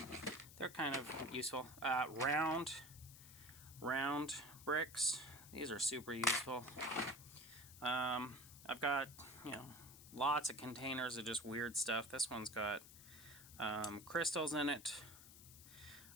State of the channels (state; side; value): noise; left; hiss, 17 dB below the sound